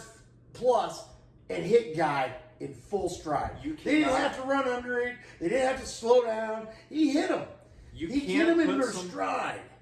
plus and hit guy in full stride. You They didn't cannot- have to run under it. They didn't have to slow down. He hit him. You He hit can't him in put their some- stride.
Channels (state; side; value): identical; both; correlation 1.00